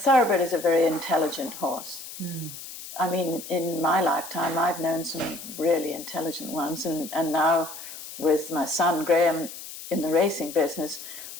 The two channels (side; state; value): left; noise; hiss, 12 dB below the sound